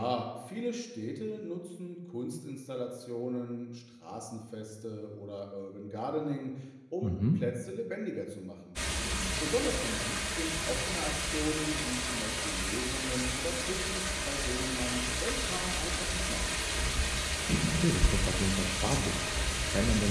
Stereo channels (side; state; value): both; identical; correlation 1.00